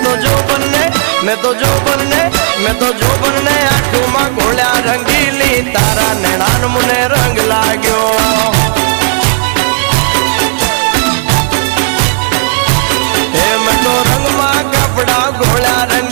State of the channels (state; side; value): silent; left; digital silence